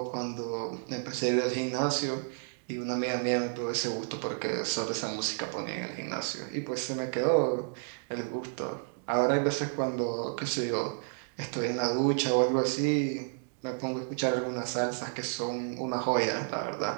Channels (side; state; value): left; silent; digital silence